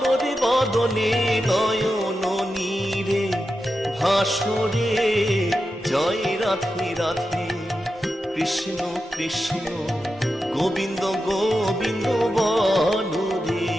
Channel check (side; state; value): both; normal; correlation 0.90